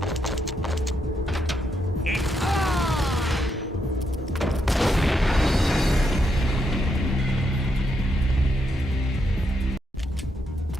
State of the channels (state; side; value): normal; both; correlation 0.80